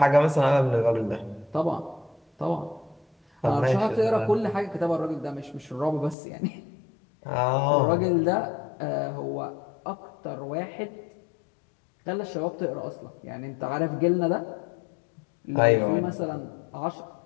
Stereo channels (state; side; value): drops out; right; at 6.2 s